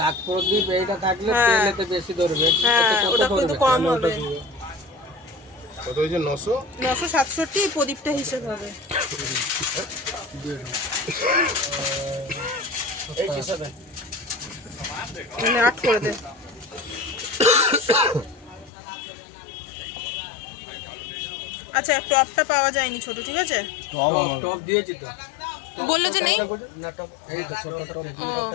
প্রদীপ এইটা থাকলে তেলেতে বেশি ধরবে। হ্যাঁ, ওটা কিন্তু কম হবে। কত হয়েছে? 967 প্রদীপটা হিসেব হবে। এই হিসাবে 8 করে দে। আচ্ছা, টপটা পাওয়া যায়নি ছোট, ঠিক আছে? টপ দিয়েছি তো, বললো যে নেই না টপ এই তো ছোট টপ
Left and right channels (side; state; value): right; drops out; at 18.7 s